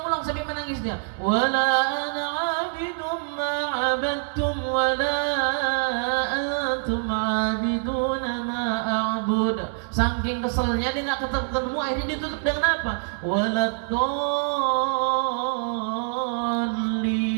sampai menangis dia. Wala ana abidum ma abadtum wala antum abiduna ma a'bud. Saking keselnya dia nggak ketemu, akhirnya dia tutup dengan apa? Waladdallin.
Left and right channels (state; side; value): silent; left; 62 dB below the other